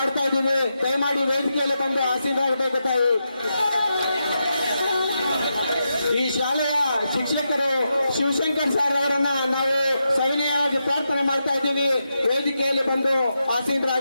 ಇದ್ದೀವಿ. ದಯಮಾಡಿ ವೇದಿಕೆಯಲ್ಲಿ ಬಂದು ಆಸೀನರಾಗಬೇಕು ತಾಯಿ. ಈ ಶಾಲೆಯ ಶಿಕ್ಷಕರು ಶಿವಶಂಕರ್ ಸರ್ ಅವರನ್ನ ನಾವು ಸವಿನಯವಾಗಿ ಪ್ರಾರ್ಥನೆ ಮಾಡ್ತಾ ಇದ್ದೀವಿ. ವೇದಿಕೆಯಲ್ಲಿ ಬಂದು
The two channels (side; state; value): both; inverted; correlation -0.86